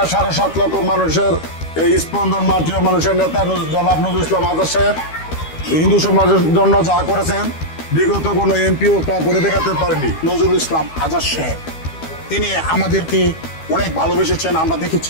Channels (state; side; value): late; right; 12 ms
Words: লক্ষ মানুষের এই স্পন্দন মাটিও মানুষের নেতা জনাব নজরুল ইসলাম আজাদ সাহেব হিন্দু সমাজের জন্য যা করেছেন বিগত কোনো এমপিও তা করে দেখাতে পারেনি। নজরুল ইসলাম আজাদ সাহেব তিনি আমাদেরকে অনেক ভালোবেসেছেন, আমরা